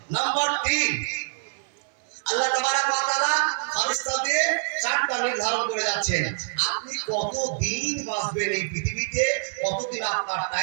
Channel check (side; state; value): left; silent; 61 dB below the other